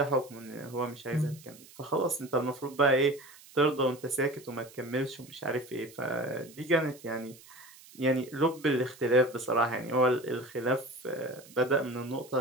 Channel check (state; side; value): noise; right; hiss, 22 dB below the sound